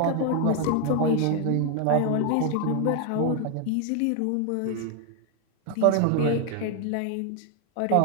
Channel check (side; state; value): both; different; correlation 0.01